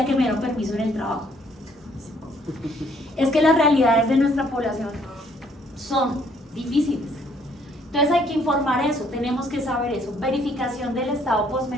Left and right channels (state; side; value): normal; both; correlation 0.65